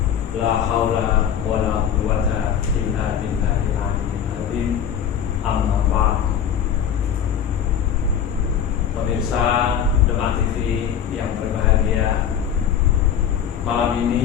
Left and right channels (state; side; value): quieter; right; 8.7 dB